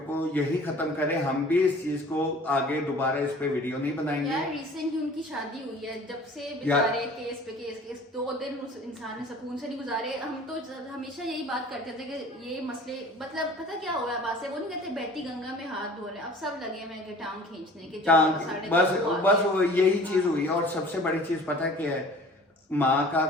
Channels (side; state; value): both; normal; correlation 0.46